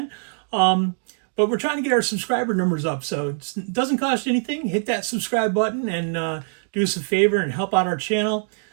but we're trying to get our subscriber numbers up. So it doesn't cost you anything. Hit that subscribe button and do us a favor and help out our channel.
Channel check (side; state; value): left; silent; digital silence